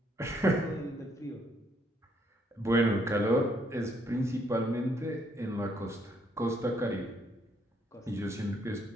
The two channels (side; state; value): both; normal; correlation 0.70